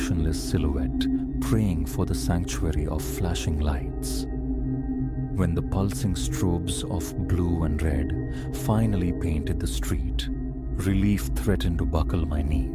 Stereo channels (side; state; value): both; identical; correlation 1.00